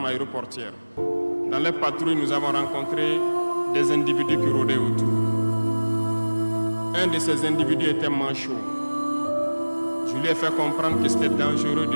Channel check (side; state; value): both; inverted; correlation -1.00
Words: aéroportière. Dans les patrouilles, nous avons rencontré des individus qui rôdaient autour. Un de ces individus était manchot. Je lui ai fait comprendre que c'était dangereux